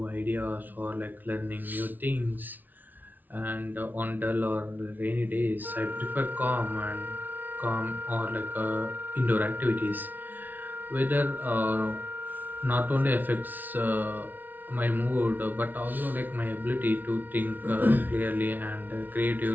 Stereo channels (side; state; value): left; late; 0.084 ms